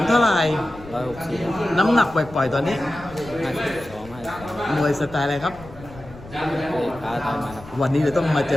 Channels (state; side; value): noise; left; rumble, 18 dB below the sound